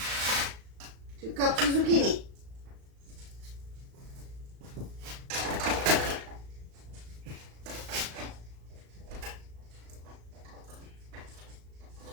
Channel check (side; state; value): left; late; 36 ms